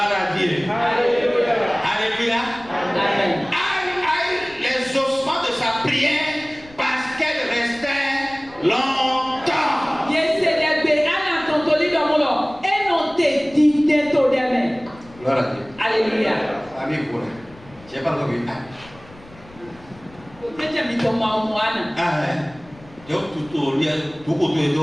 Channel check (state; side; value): noise; left; rumble, 23 dB below the sound